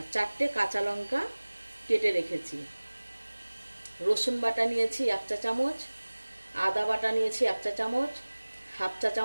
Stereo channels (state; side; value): inverted; both; correlation -1.00